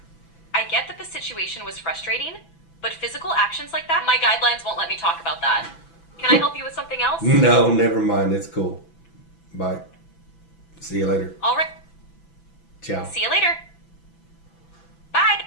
I get that the situation was frustrating, but physical actions like that, my guidelines won't let me talk about that. Can I help you with something else? No, never mind. It's cool. Bye. See you later. All right. Ciao. See you later. Bye.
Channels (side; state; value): right; late; 6.0 ms